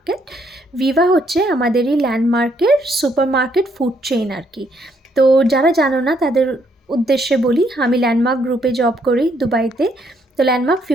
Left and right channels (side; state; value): both; normal; correlation 0.71